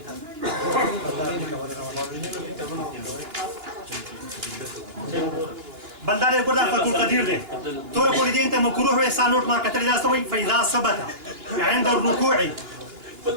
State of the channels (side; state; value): left; late; 2.9 ms